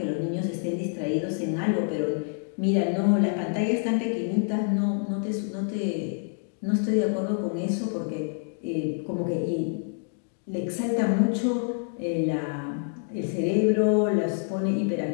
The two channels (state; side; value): silent; right; digital silence